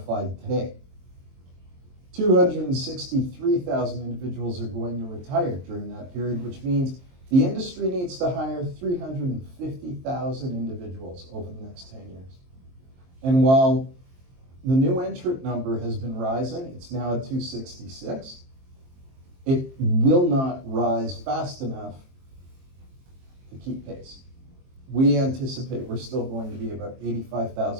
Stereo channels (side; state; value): left; late; 23 ms